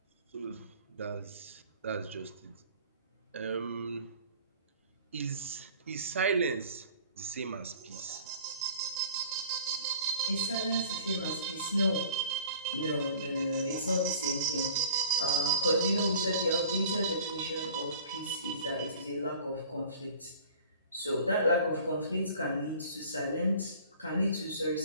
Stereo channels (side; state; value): both; inverted; correlation -0.47